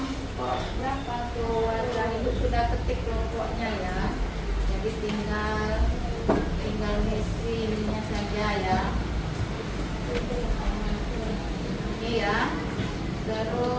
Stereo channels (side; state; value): both; identical; correlation 1.00